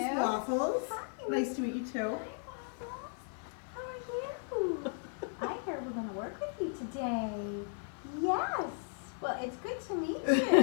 Waffles. Hi. Nice to meet you too. How are you? I heard we're going to work with you today. Yes. Well, it's good to meet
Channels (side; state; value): right; silent; 54 dB below the other